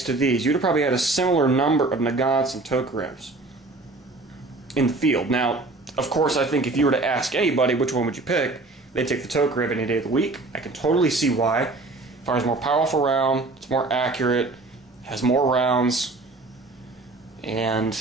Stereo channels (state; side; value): quieter; left; 3.2 dB